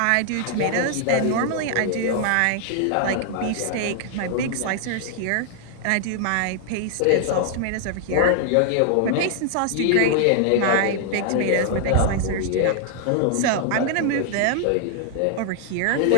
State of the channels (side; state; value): both; different; correlation 0.00